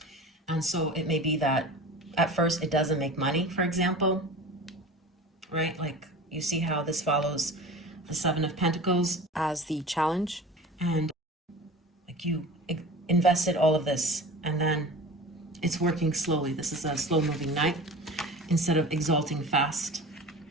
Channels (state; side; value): normal; both; correlation 0.36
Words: And so it may be that at first it doesn't make money, for example, right? Like you see how this follows the Seven of Pentacles as the challenge. And like you invested all of this and then it's working slowly. This is a slow moving knight instead of exalting fast.